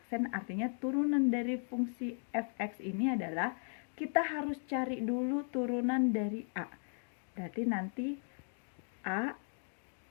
artinya turunan dari fungsi fx ini adalah kita harus cari dulu turunan dari A. Berarti nanti A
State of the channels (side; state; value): right; silent; 53 dB below the other